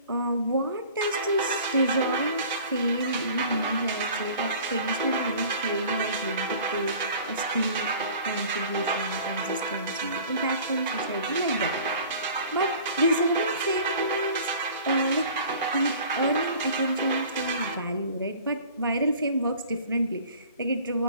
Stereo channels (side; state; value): both; inverted; correlation -0.47